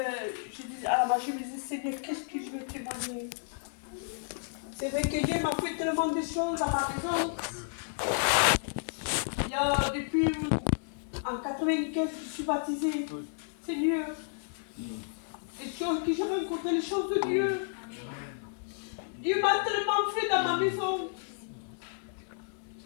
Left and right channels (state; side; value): silent; right; 57 dB below the other